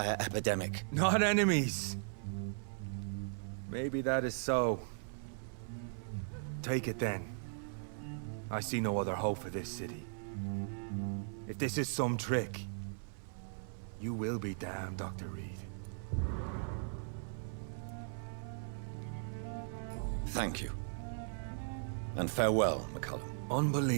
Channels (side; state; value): left; silent; 52 dB below the other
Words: epidemic. Not enemies. Maybe that is so. Take it then. I see no other hope for this city. If this is some trick, you will be damned, Dr. Reed. Thank you. And farewell, McCullum.